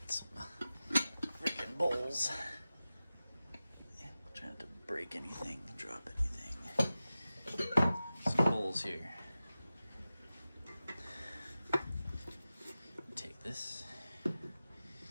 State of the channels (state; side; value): inverted; both; correlation -0.95